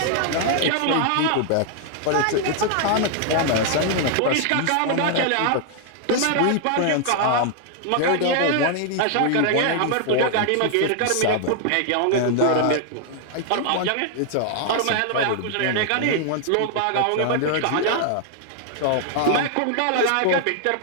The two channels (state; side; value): different; both; correlation 0.00